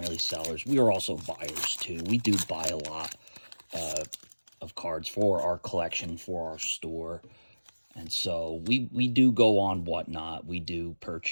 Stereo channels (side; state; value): both; inverted; correlation -1.00